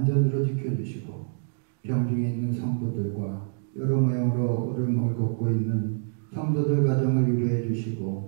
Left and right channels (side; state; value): left; silent; digital silence